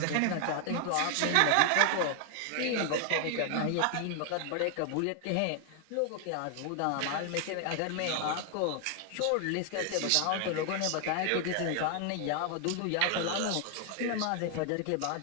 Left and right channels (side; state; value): both; different; correlation 0.00